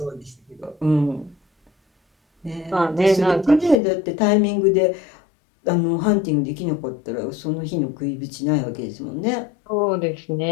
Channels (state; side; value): drops out; right; at 3.8 s